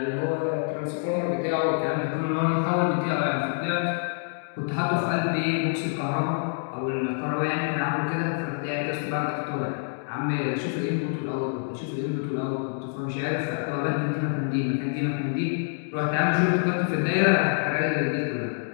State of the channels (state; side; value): silent; right; digital silence